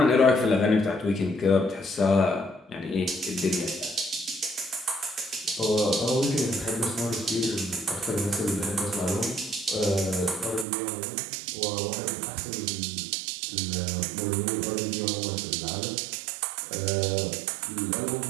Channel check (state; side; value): drops out; left; at 10.7 s